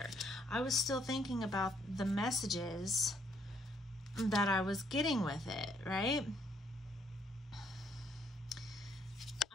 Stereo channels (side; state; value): both; normal; correlation 0.69